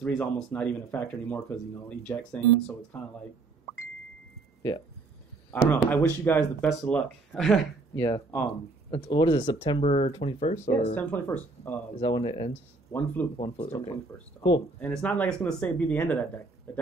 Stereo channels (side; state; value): left; quieter; 3.4 dB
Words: is almost not even a factor anymore because eject saying, so it's kind of like I don't know. I wish you guys the best of luck. Yeah. What is it? September 21st or September 21st. Is that when it ends? One flute. Okay. 21st. Cool. And it's not like it's going to be the end of that deck. The